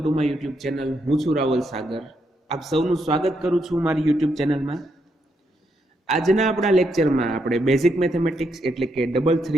my YouTube channel. હું છું રાવલ સાગર. આપ સૌનું સ્વાગત કરું છું મારી યુટ્યુબ ચેનલમાં. આજના આપણા લેક્ચરમાં આપણે બેઝિક મેથેમેટિક્સ એટલે કે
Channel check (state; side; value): normal; both; correlation 0.79